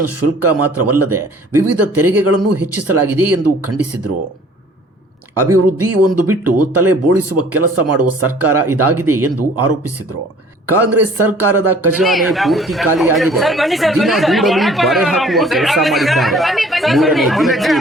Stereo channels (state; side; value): normal; both; correlation 0.53